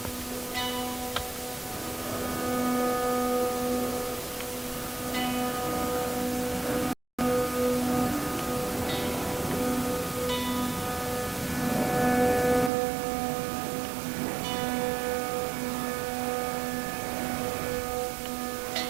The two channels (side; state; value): left; drops out; at 12.7 s